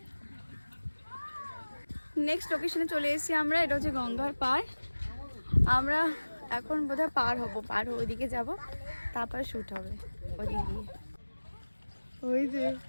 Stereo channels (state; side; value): inverted; both; correlation -1.00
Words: নেক্সট লোকেশনে চলে এসেছি আমরা, এটা হচ্ছে গঙ্গার পার। আমরা এখন বোধহয় পার হয়ে ওইদিকে যাব, তারপর শুট হবে ওদিকে গিয়ে। ওই যে